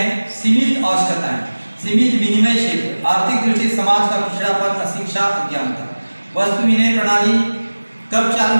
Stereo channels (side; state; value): both; inverted; correlation -1.00